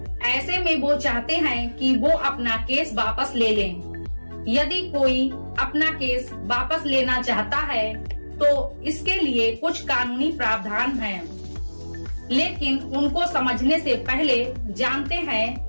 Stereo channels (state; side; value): inverted; both; correlation -1.00